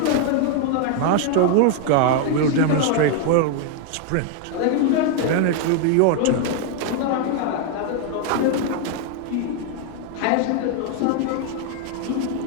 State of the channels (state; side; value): different; both; correlation 0.00